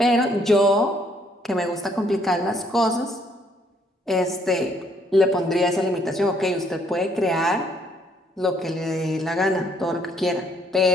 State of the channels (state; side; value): normal; both; correlation 0.67